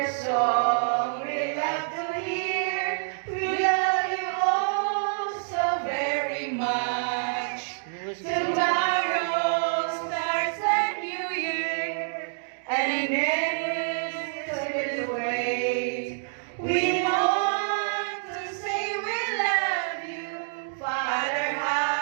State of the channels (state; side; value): silent; left; digital silence